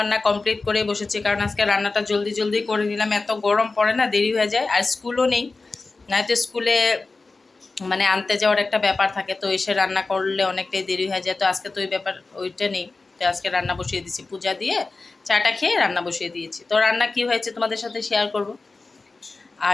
কমপ্লিট করে বসেছি, কারণ আজকে রান্নাটা জলদি জলদি করে নিলাম, এত গরম পড়ে না, দেরি হয়ে যায়। আর স্কুলও নেই, নয়তো স্কুলে মানে আনতে যাওয়ার একটা ব্যাপার থাকে, তো এসে রান্না করলে অনেকটাই দেরি হয়ে যায়। তো আজকে তো ওই ব্যাপার ওইটা নেই, তো আজকে রান্না বসিয়ে দিয়েছি, পূজা দিয়ে চাটা খেয়ে রান্না বসিয়ে দিয়েছি। তো রান্না কি হয়েছে তোমাদের সাথে শেয়ার করব।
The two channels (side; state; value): right; quieter; 3.7 dB